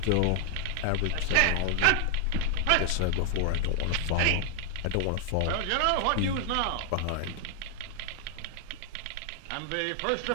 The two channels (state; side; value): different; both; correlation 0.00